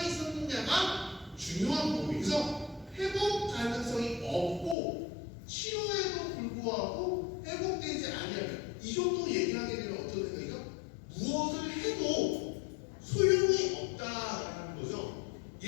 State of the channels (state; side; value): drops out; right; at 4.8 s